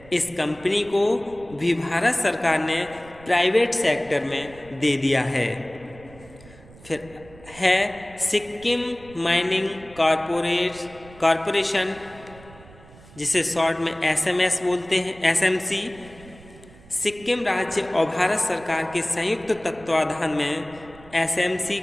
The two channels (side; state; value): right; noise; rumble, 22 dB below the sound